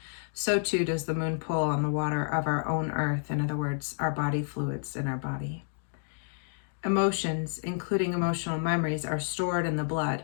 so too does the moon pull on the water of our own earth, in other words, our body fluids in our body. Emotions, including emotional memories, are stored in the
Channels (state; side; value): silent; right; digital silence